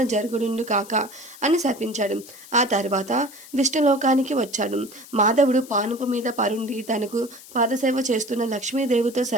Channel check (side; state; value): left; noise; hiss, 19 dB below the sound